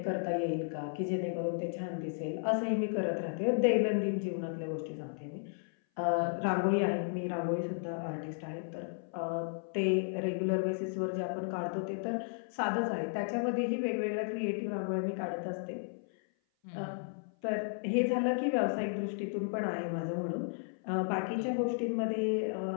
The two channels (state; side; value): silent; right; 55 dB below the other